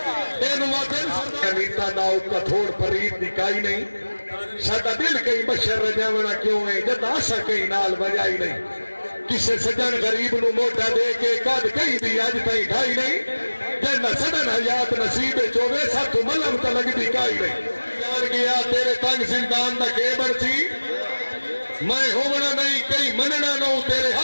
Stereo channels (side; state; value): both; inverted; correlation -1.00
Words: اے نواتن نیتا دا اوکا تھوڑ پرید دکھائی نہیں ساڑھا دل کئی بشر رجاونا کیوں ہے جد آسا کئی نال بجائی نہیں کسے سجن غریب نو موٹا دے کے قد کئی دی آج تائی ڈھائی نہیں جنہ سڈن حیات نصیب چوبے ساتھ ملم تا لگ دی کائی نہیں یار گیا تیرے تنگ زندان دا کیبڑ سی میں ہونا نہیں کئی مننا نو تیرے